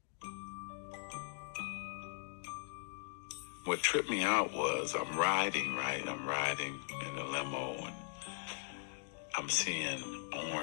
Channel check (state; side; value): silent; right; digital silence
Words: What tripped me out was I'm riding in the limo, and I'm seeing